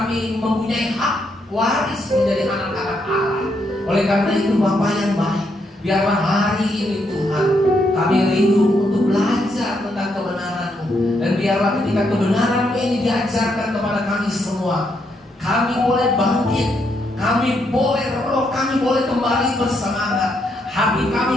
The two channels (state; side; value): normal; both; correlation 0.77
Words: mempunyai hak waris menjadi anak-anak Allah. Oleh karena itu Bapa yang baik, biarlah hari ini Tuhan kami rindu untuk belajar tentang kebenaran-Mu. Dan biarlah ketika kebenaran-Mu ini diajarkan kepada kami semua, kami boleh bangkit, kami boleh roh kami boleh kembali bersemangat, hati